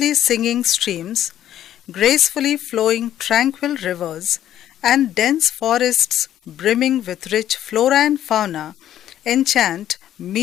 singing streams, gracefully flowing tranquil rivers, and dense forests brimming with rich flora and fauna enchant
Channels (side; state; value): right; quieter; 11.5 dB